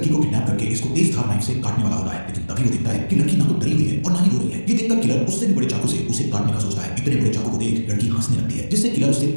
को किडनैप करके इसको तेज धार नाइफ से काटने वाला होता है, लेकिन तभी वो देखता है कि लड़की ना तो डरी हुई है और ना ही रो रही है। ये देखकर किलर उससे भी बड़े चाकू से उसे काटने का सोचता है। इतने बड़े चाकू को देख लड़की हंसने लगती है, जिससे किलर उससे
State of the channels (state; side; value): inverted; both; correlation -1.00